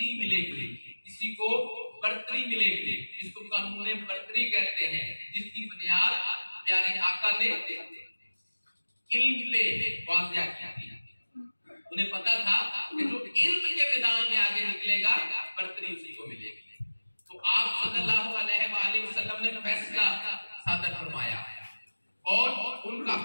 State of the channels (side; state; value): both; inverted; correlation -1.00